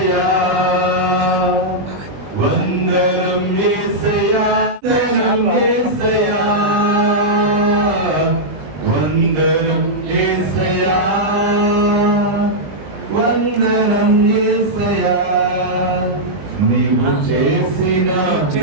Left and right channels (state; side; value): late; left; 20 ms